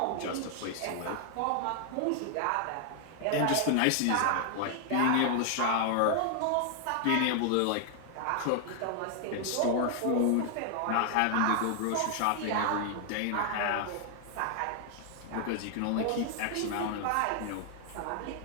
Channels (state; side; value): different; both; correlation 0.00